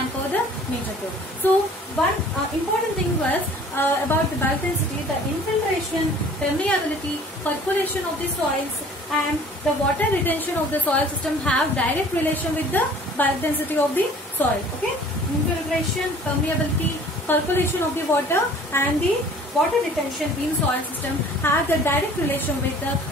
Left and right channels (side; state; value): both; normal; correlation 0.50